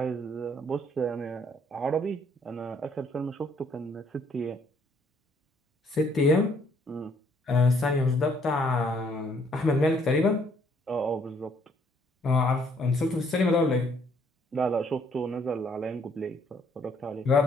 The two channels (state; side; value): normal; both; correlation 0.66